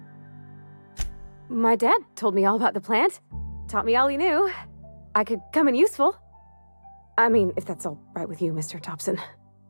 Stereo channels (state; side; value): inverted; both; correlation -1.00